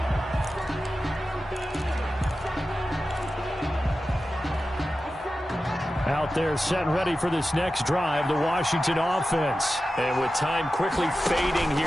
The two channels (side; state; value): both; normal; correlation 0.93